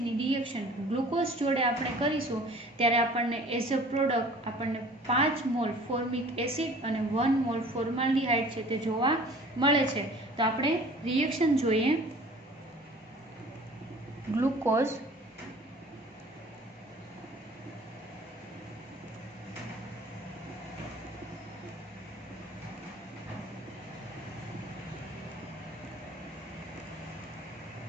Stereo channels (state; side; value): normal; both; correlation 0.47